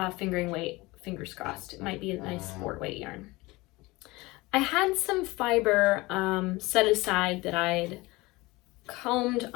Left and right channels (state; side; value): quieter; right; 22.0 dB